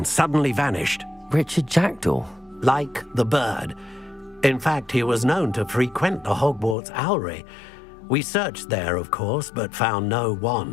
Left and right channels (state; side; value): drops out; right; at 6.8 s